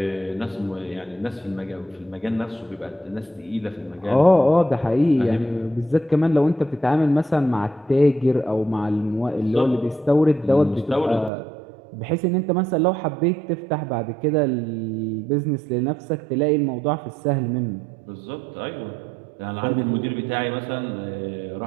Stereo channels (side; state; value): left; drops out; at 11.3 s